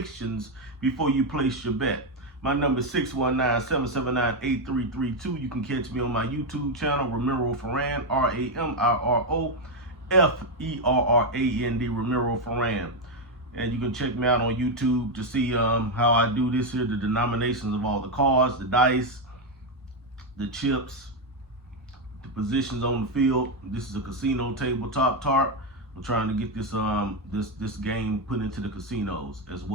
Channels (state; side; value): normal; both; correlation 0.05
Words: before you place your bet. My number is 619-779-8332. You can catch me on my YouTube channel, Ramiro Ferran, Ramirofferrand, Ramiro Ferran. And you can check me out on YouTube to see how I do this here, the denominations of all the cards, the dice, the chips, the positions on the field. This is a casino tabletop tarp. I'm trying to get this this game put into the casinos as